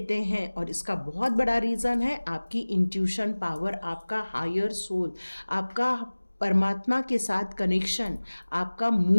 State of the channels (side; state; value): both; inverted; correlation -1.00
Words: हैं। और इसका बहुत बड़ा रीज़न है आपकी इंट्यूशन पावर, आपका हायर सोल, आपका परमात्मा के साथ कनेक्शन, आपका